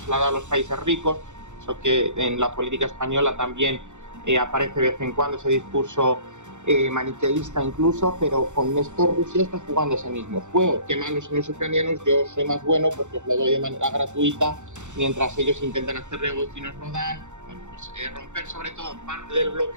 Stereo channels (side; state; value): left; late; 0.84 ms